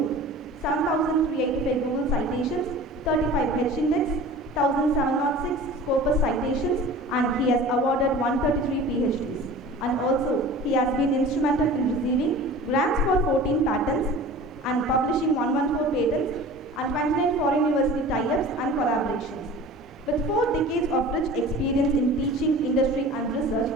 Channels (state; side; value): normal; both; correlation 0.40